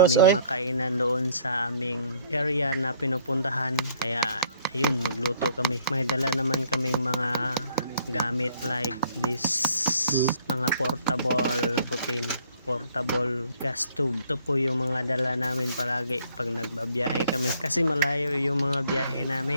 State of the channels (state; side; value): inverted; both; correlation -0.61